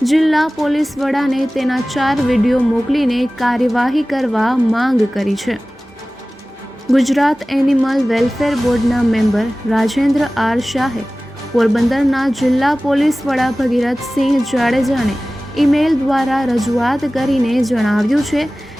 જિલ્લા પોલીસ વડાને તેના 4 વિડીયો મોકલીને કાર્યવાહી કરવા માંગ કરી છે। ગુજરાત એનિમલ વેલફેર બોર્ડના મેમ્બર રાજેન્દ્ર આર શાહે પોરબંદરના જિલ્લા પોલીસ વડા ભગીરથસિંહ જાડેજાને ઈમેલ દ્વારા રજૂઆત કરીને જણાવ્યું છે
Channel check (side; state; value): both; normal; correlation 0.97